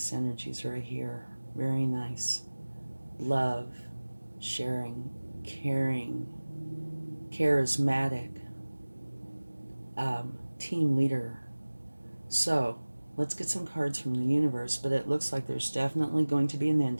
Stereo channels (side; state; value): both; inverted; correlation -1.00